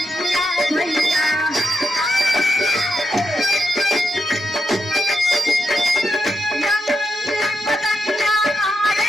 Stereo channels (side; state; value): both; normal; correlation 0.82